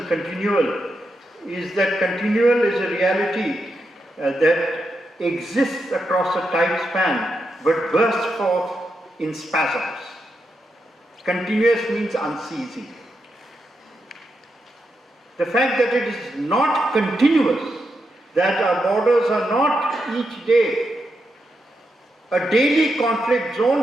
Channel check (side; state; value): both; normal; correlation 0.85